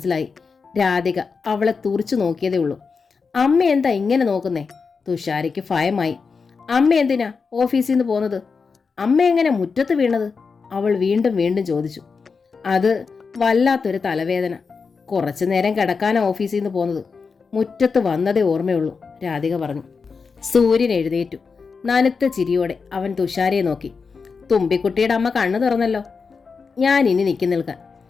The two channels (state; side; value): quieter; right; 5.1 dB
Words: രാധിക അവളെ തുറിച്ചു നോക്കിയതേ ഉള്ളൂ. അമ്മ എന്താ ഇങ്ങനെ നോക്കുന്നേ? തുഷാരയ്ക്ക് ഭയമായി. അമ്മ എന്തിനാ ഓഫീസിൽ നിന്ന് പോന്നത്? അമ്മ എങ്ങനെ മുറ്റത്ത് വീണത്? അവൾ വീണ്ടും വീണ്ടും ചോദിച്ചു. അത് വല്ലാത്തൊരു തലവേദന. കുറച്ചു നേരം കിടക്കാനാ ഓഫീസിൽ നിന്ന് പോന്നത്. മുറ്റത്ത് വന്നതേ ഓർമ്മയുള്ളൂ, രാധിക പറഞ്ഞു. സൂര്യൻ എഴുന്നേറ്റു. നനുത്ത ചിരിയോടെ അവൻ തുഷാരയെ നോക്കി. തുമ്പിക്കുട്ടിയുടെ അമ്മ കണ്ണു തുറന്നല്ലോ. ഞാൻ ഇനി നിൽക്കാൻ.